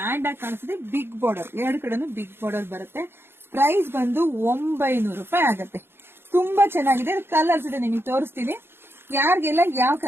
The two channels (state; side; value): late; left; 0.11 ms